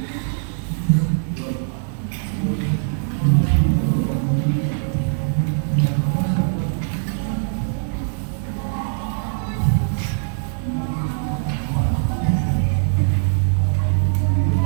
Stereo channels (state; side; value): silent; left; digital silence